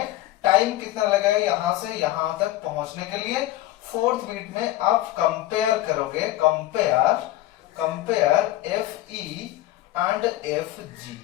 टाइम कितना लगेगा यहां से यहां तक पहुंचने के लिए। फोर्थ बीट में आप कंपेयर करोगे, कंपेयर Fe एंड Fg।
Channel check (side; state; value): right; quieter; 15.3 dB